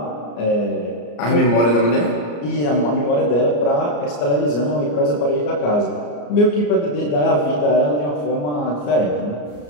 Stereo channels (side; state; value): right; late; 34 ms